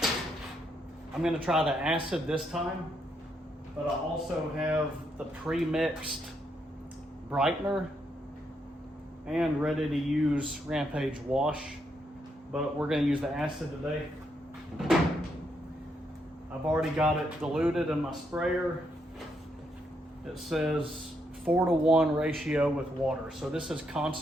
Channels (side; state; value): both; normal; correlation 0.78